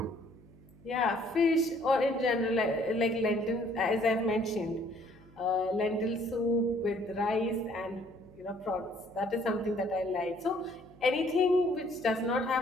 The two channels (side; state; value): left; noise; hum, 29 dB below the sound